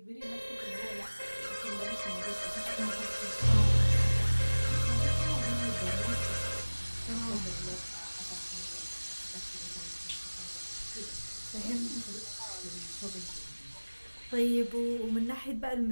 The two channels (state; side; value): inverted; both; correlation -1.00